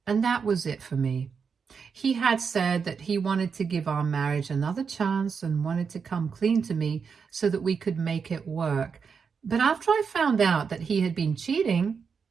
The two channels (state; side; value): quieter; left; 5.9 dB